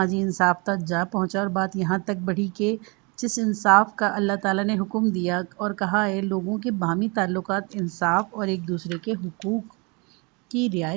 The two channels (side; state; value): left; quieter; 29.9 dB